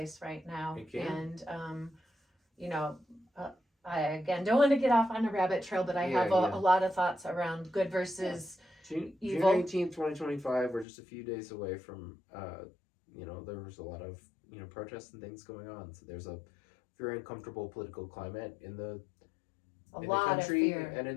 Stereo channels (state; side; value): drops out; right; at 10.9 s